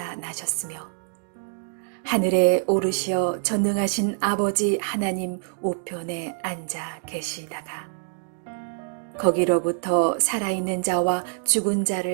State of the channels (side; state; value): left; silent; digital silence